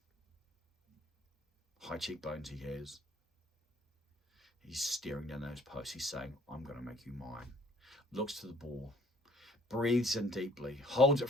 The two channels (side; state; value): both; normal; correlation 0.57